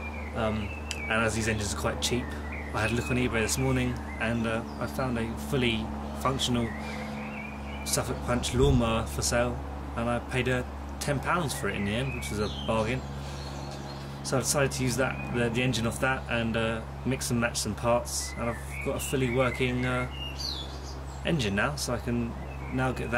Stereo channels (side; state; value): both; identical; correlation 1.00